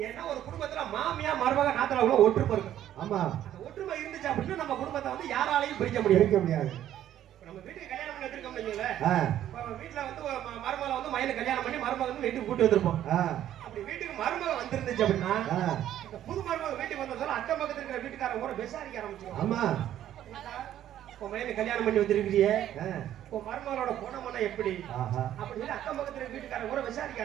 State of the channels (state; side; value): quieter; left; 11.7 dB